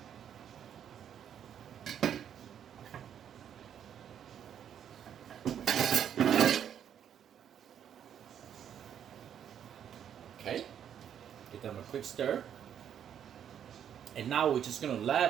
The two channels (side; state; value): left; quieter; 9.2 dB